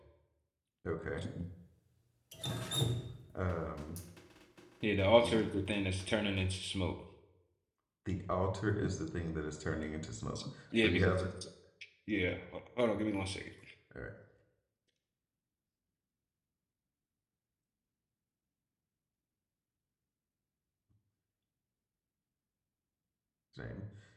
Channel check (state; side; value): identical; both; correlation 1.00